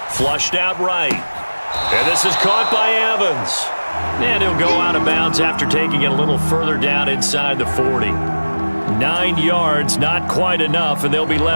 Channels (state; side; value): inverted; both; correlation -1.00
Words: Flushed out right. And this is caught by Evans. And he'll go out of bounds after taking it a little further down inside the 40. 9 yards, not quite enough, and they'll be